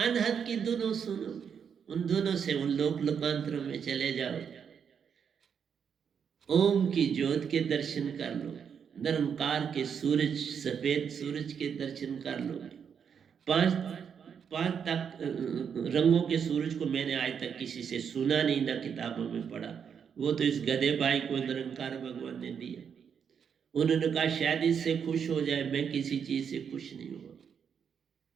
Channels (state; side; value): quieter; left; 7.2 dB